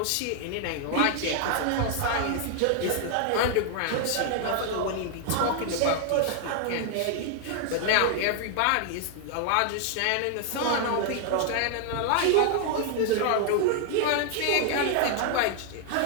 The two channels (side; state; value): both; different; correlation 0.00